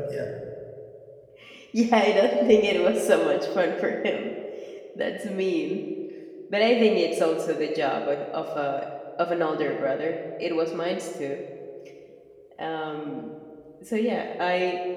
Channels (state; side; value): identical; both; correlation 1.00